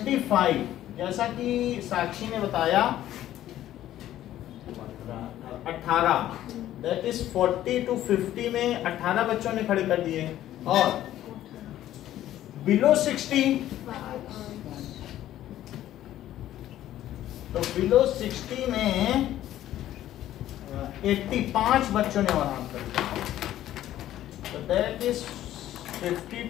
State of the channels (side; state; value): right; quieter; 13.0 dB